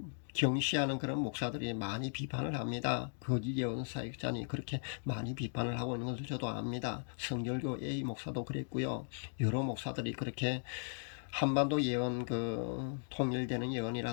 경시하는 그런 목사들이 많이 비판을 합니다. 거짓 예언 사역자니 그렇게 많이 비판을 하고 있는 것을 저도 압니다. 성결교 A 목사도 그랬고요. 여러 목사들이 그렇게 한반도 예언 통일되는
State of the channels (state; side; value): silent; right; digital silence